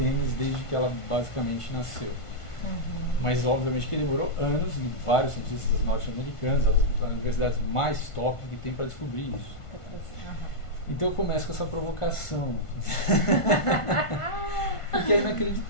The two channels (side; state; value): right; late; 1.5 ms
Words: desde que ela basicamente nasceu. Mas obviamente que demorou anos, e vários cientistas norte-americanos, as universidades mais top que tem para descobrir isso. Então eu começo com essa provocação, porque é